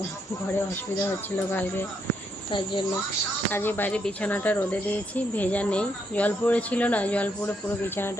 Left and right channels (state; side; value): normal; both; correlation 0.76